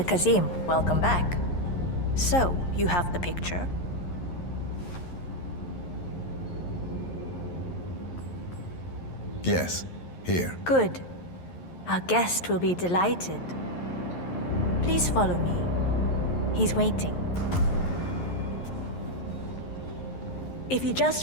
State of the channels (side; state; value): right; late; 11 ms